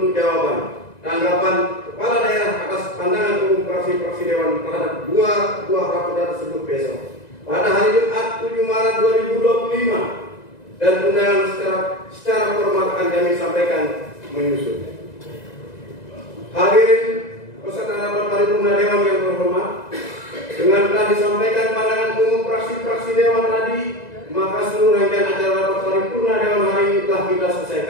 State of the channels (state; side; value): late; right; 2.0 ms